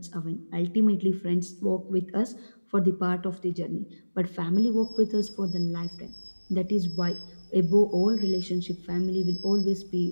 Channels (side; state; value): both; inverted; correlation -1.00